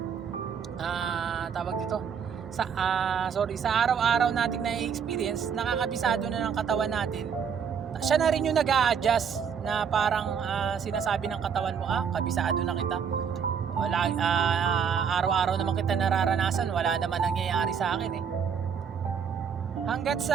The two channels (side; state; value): left; quieter; 7.1 dB